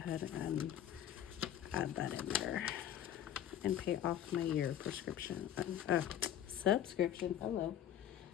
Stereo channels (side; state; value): right; quieter; 10.8 dB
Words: and add that in there and pay off my year prescription, subscription. Hello,